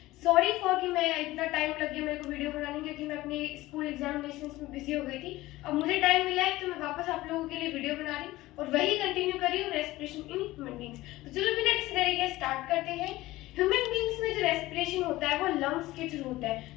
Sorry for कि मैं इतना टाइम लग गया मेरे को वीडियो बनाने, क्योंकि मैं अपने स्कूल एग्जामिनेशन में बिजी हो गई थी। अब मुझे टाइम मिला है तो मैं वापस आप लोगों के लिए वीडियो बना रही हूँ और वही कंटिन्यू कर रही हूँ, रेस्पिरेशन इन ह्यूमन बींग्स। तो चलो बिना किसी तरीके स्टार्ट करते हैं। ह्यूमन बींग्स में जो रेस्पिरेशन होता है वो लंग्स के थ्रू होता है।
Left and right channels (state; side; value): quieter; right; 17.9 dB